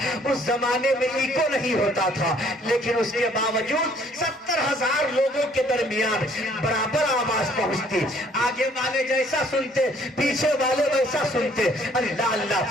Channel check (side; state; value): both; normal; correlation 0.61